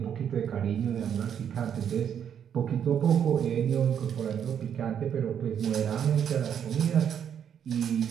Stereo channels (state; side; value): quieter; left; 8.6 dB